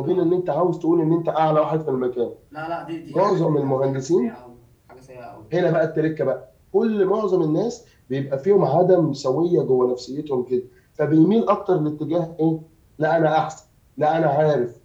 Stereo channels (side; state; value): both; identical; correlation 1.00